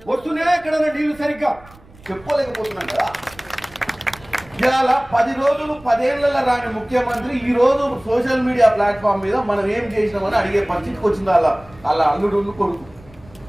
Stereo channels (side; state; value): right; noise; rumble, 24 dB below the sound